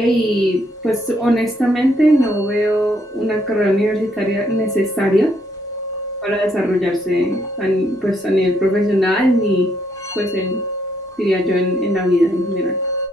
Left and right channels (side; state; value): both; normal; correlation 0.73